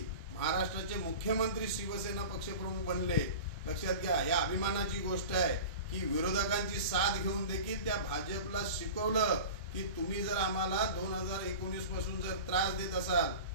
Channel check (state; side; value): inverted; both; correlation -0.34